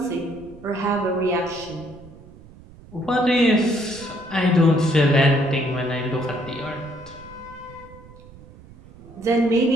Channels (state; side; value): noise; right; rumble, 20 dB below the sound